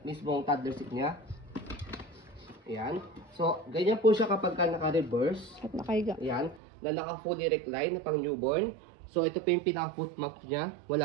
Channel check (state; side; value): drops out; left; at 6.6 s